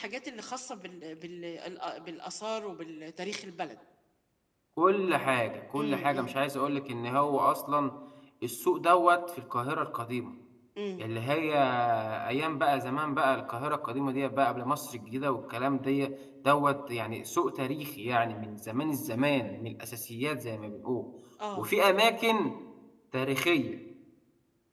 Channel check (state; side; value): identical; both; correlation 1.00